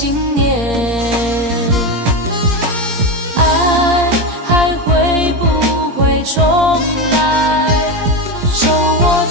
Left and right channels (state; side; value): late; left; 17 ms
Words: 念。爱还会不会重来？手握